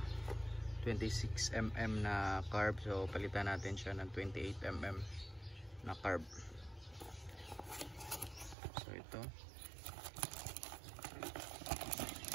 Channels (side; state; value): left; drops out; at 8.6 s